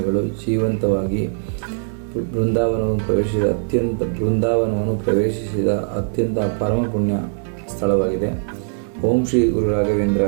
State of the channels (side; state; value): left; silent; digital silence